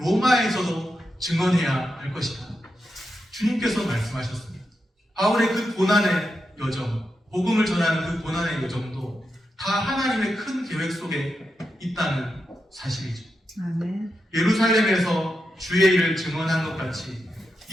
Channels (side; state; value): both; normal; correlation 0.87